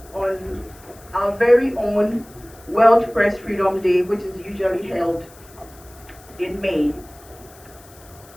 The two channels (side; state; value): left; noise; hiss, 24 dB below the sound